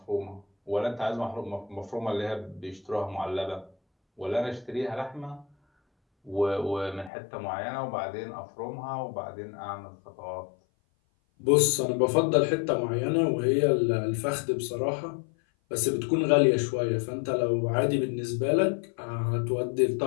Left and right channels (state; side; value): drops out; right; at 7.1 s